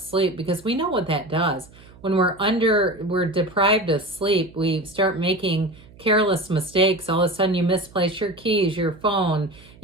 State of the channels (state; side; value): noise; right; hum, 24 dB below the sound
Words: because we know what that does. When we're deprived of sleep, we start making careless mistakes. All of a sudden you misplace your keys, your phone,